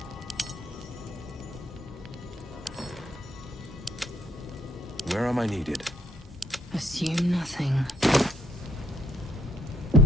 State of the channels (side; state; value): both; normal; correlation 0.65